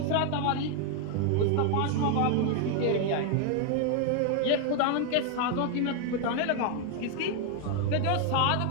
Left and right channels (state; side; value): different; both; correlation 0.00